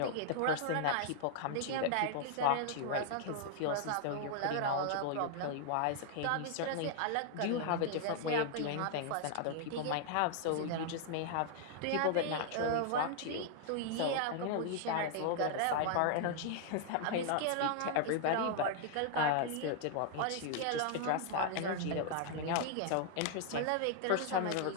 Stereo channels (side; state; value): both; different; correlation -0.01